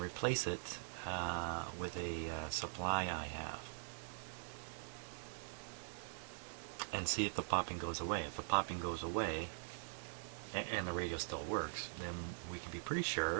it with a supply I have, and see if the popping goes away. If the popping goes away and the radio still works, then we can be pretty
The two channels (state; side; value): silent; left; digital silence